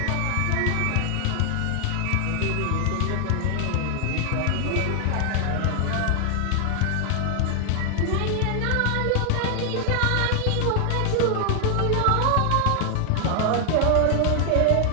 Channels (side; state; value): both; different; correlation 0.00